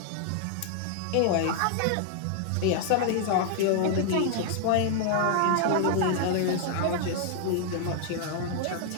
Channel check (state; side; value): different; both; correlation 0.00